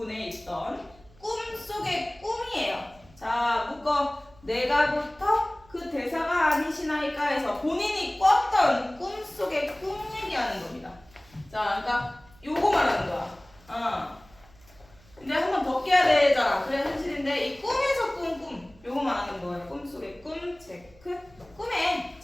있던 꿈속의 꿈이에요. 자, 묶어. 내가부터 그 대사가 아니시나이까 해서 본인이 꿨던 꿈속의 꿈 얘기하는 겁니다. 자, 그러니까 요거 말하는 거야. 근데 한 번 더 깨야 되잖아. 그래 현실인데 이 꿈에서 꾼 꿈. 요거 말하는 거예요. 꿈속의 꿈 체크. 꿈에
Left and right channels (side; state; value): right; noise; hum, 27 dB below the sound